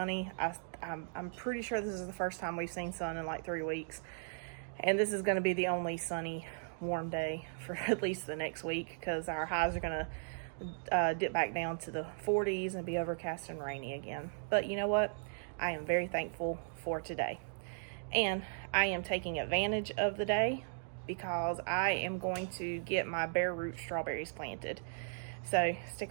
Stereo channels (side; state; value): left; silent; digital silence